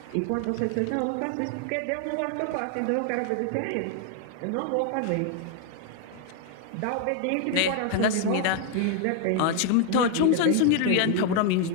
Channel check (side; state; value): both; different; correlation 0.00